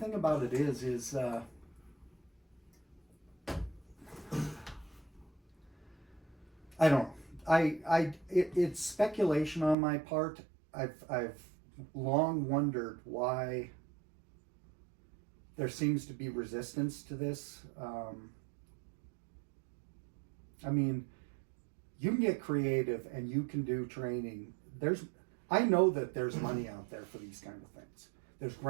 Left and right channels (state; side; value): drops out; left; at 9.8 s